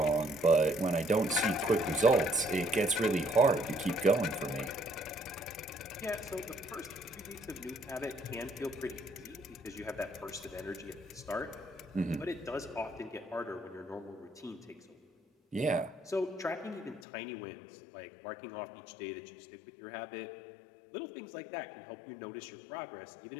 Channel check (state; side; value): drops out; right; at 17.0 s